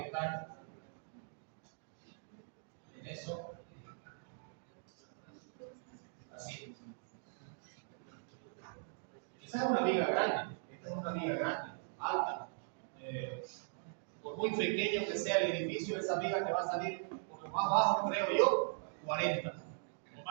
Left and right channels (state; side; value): silent; left; digital silence